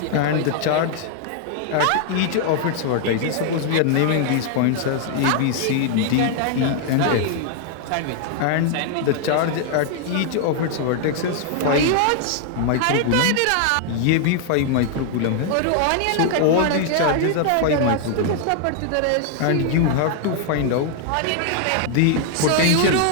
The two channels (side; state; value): both; different; correlation 0.00